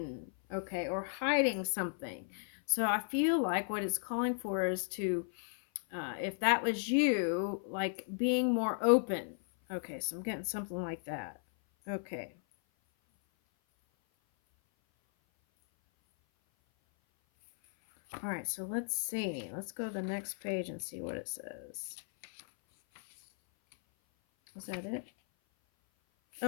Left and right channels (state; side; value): silent; right; 54 dB below the other